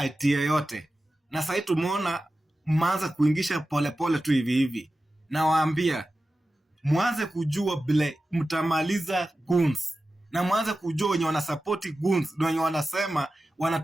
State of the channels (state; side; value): normal; both; correlation 0.94